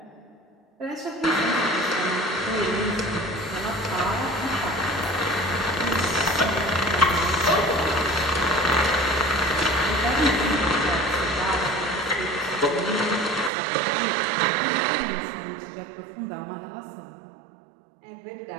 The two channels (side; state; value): left; drops out; at 13.5 s